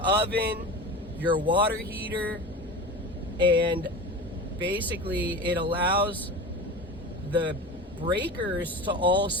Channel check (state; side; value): normal; both; correlation 0.30